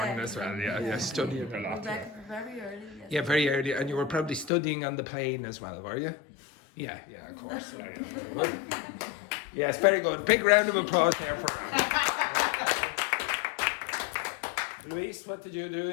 as well, yeah, studying a we're lot. back very early. Yeah, very early, and you were probably studying on the plane as well, were you? Yeah, of course. Yeah, very good. Yes, very good. Big round of applause here for Ram. Luis, what did you do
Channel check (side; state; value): right; drops out; at 4.5 s